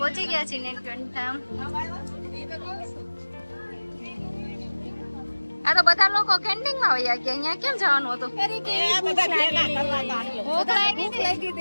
ગયા છીએ નીલકંઠ. આ તો બધા લોકો કેન્ટીન માં વયા ગયા, અહીંયા કેમ જવાનું હતું?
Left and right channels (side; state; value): both; inverted; correlation -1.00